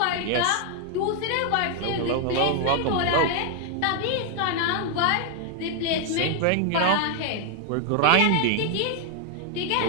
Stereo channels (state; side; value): different; both; correlation 0.00